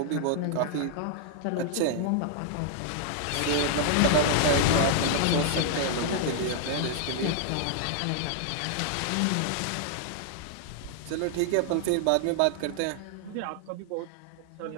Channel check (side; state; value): both; different; correlation -0.01